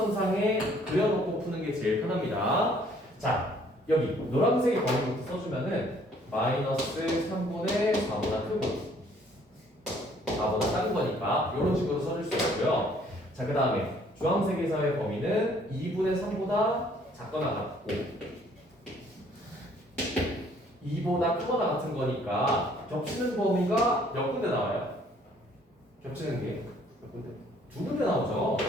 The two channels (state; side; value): normal; both; correlation 0.60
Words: 그려놓고 푸는 게 제일 편합니다. 자, 여기 노란색의 범위부터 써주면은 마이너스 3분의 4보다 크고 4보다 작은 거니까 이런 식으로 써줄 수 있고요. 자, 그 다음에 주황색에서의 범위는 2분의 3보다 작거나 같고 2보다 크거나 같은 거니까 겹치는 범위가 몇 군데 나와요? 겹치는 게 몇 군데? 두 군데 나오죠.